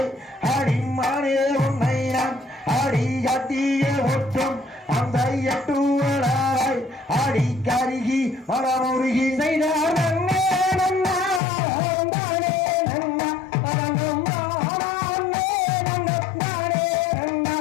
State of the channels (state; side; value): drops out; right; at 11.4 s